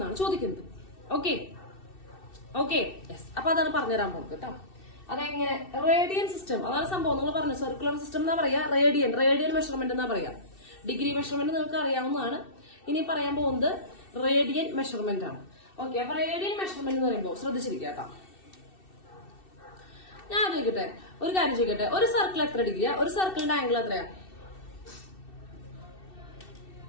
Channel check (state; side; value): late; right; 2.6 ms